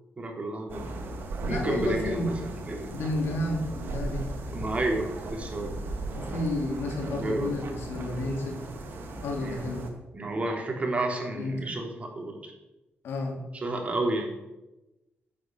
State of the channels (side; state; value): both; normal; correlation 0.77